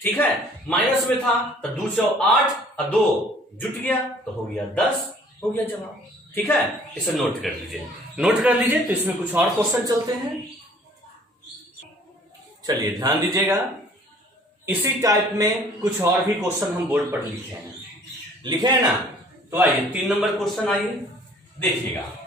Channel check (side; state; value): both; normal; correlation 0.55